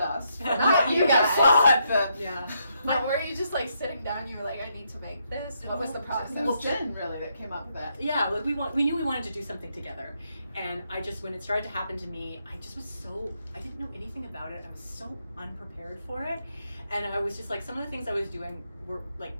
Not you guys. Yeah. But were you just like sitting down, you were like, I need to make this? What was the process? It was Jen really that came up with that. Yeah, like we knew we wanted to do something together. And when it started to happen to me, I didn't know anything about it. I was so unprepared for it. And I was just like, some of the things I was doing were like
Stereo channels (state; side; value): inverted; both; correlation -0.77